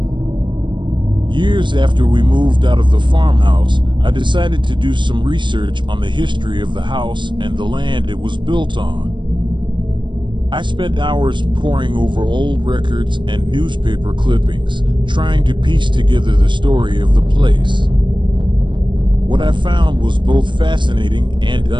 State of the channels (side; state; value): left; late; 0.23 ms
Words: Years after we moved out of the farmhouse, I decided to do some research on the history of the house and the land it was built on. I spent hours poring over old records and newspaper clippings, trying to piece together the story of the place. What I found was both fascinating and